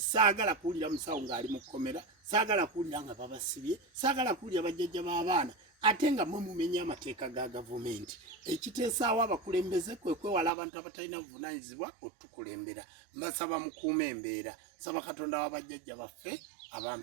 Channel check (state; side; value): drops out; left; at 10.5 s